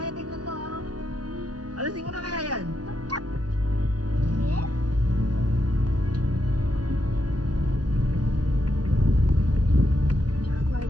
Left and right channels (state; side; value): late; left; 0.69 ms